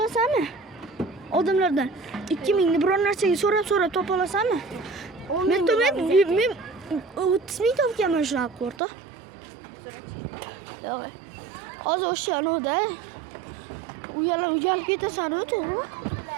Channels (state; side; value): drops out; left; at 8.8 s